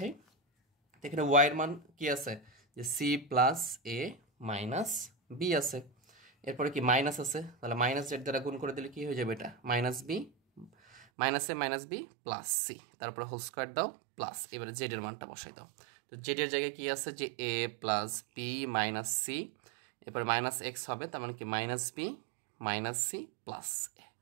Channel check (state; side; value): drops out; left; at 11.1 s